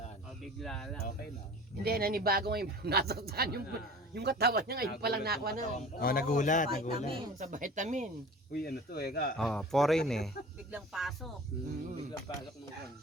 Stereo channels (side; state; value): both; normal; correlation 0.41